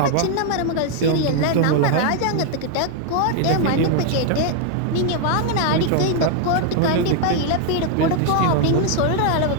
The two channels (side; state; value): both; different; correlation 0.00